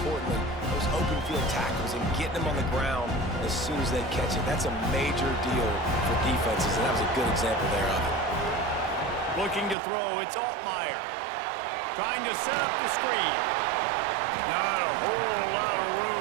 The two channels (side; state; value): left; drops out; at 9.8 s